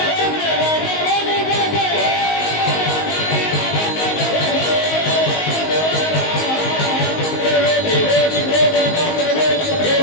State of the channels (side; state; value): right; late; 19 ms